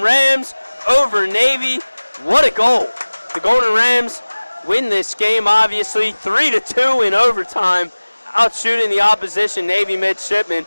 Rams over Navy. What a goal. The Golden Rams win this game, obviously, 3-2 in overtime, outshooting the opposition Navy midshipmen.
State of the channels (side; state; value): both; inverted; correlation -1.00